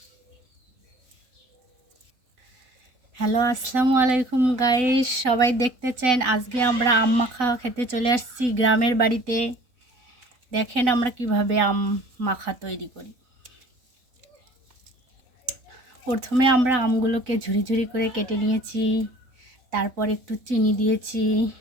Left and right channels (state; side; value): late; left; 4.0 ms